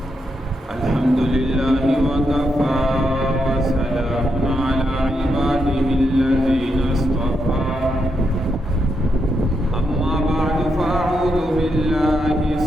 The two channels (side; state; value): both; normal; correlation 0.82